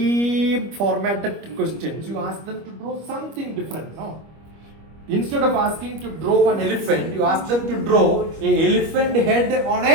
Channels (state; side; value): late; left; 25 ms